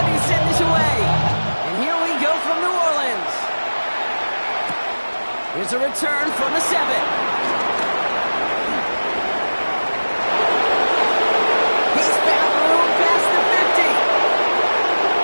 Here's a return from the 7. He's found room past the 50.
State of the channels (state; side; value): inverted; both; correlation -1.00